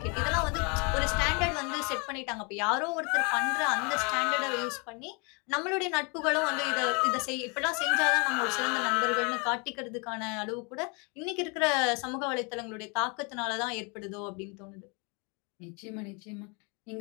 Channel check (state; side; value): quieter; right; 32.8 dB